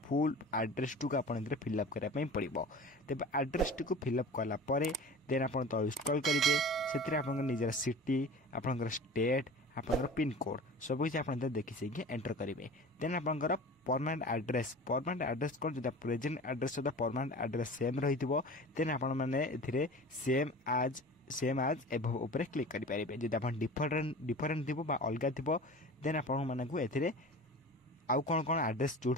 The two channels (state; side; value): normal; both; correlation 0.37